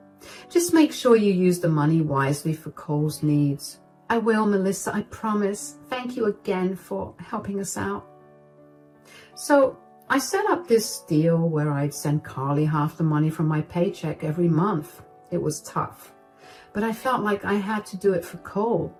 Just make sure you use the money wisely for Cole's needs. I will, Melissa, I promise. Thank you again for helping us out. So I set up this deal where I'd send Carly half the money from my paycheck every month. It was tough, but I felt like I had to do it for Cole.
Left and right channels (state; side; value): identical; both; correlation 1.00